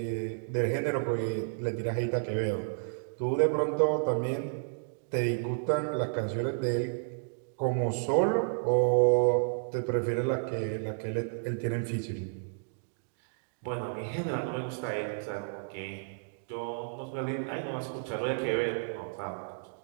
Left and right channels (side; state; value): left; silent; digital silence